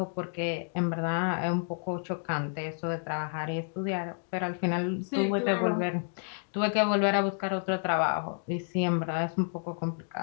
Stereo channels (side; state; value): right; silent; digital silence